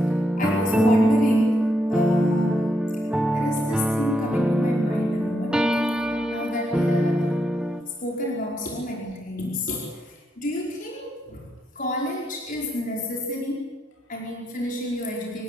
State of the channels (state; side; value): normal; both; correlation 0.80